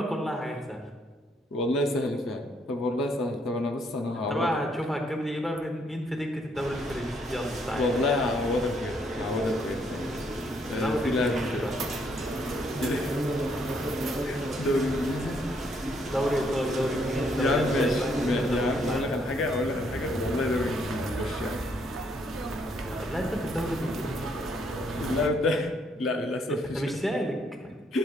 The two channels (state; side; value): normal; both; correlation 0.70